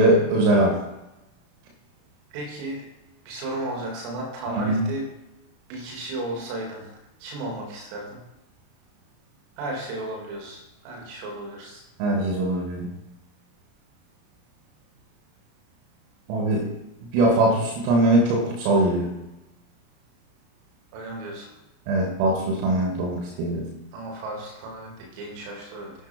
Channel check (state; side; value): late; left; 34 ms